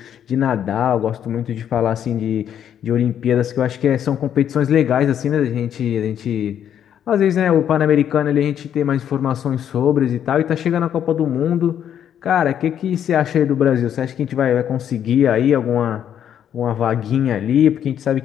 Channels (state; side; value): quieter; right; 9.5 dB